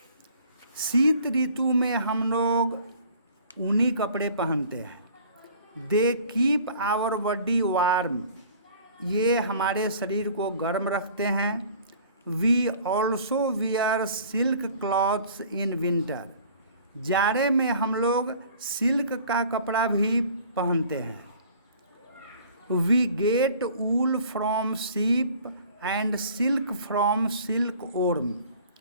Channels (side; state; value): both; inverted; correlation -0.50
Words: शीत ऋतु में हम लोग ऊनी कपड़े पहनते हैं। They keep our body warm, ये हमारे शरीर को गर्म रखते हैं। We also wear silk clothes in winter, जाड़े में हम लोग सिल्क का कपड़ा भी पहनते हैं। We get wool from sheep and silk from silkworm,